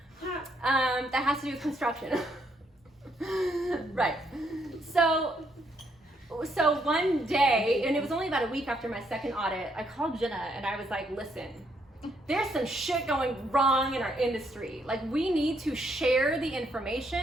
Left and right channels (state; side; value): normal; both; correlation 0.73